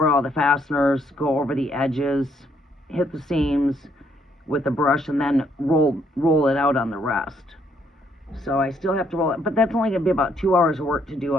all the fasteners, go over the edges, hit the seams with the brush, and then roll it out on the rest. So I still have to roll it, but that's only going to be about 2 hours of work to do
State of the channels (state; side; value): normal; both; correlation 0.70